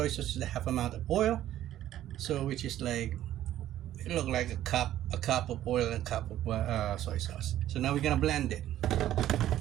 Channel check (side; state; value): left; quieter; 12.7 dB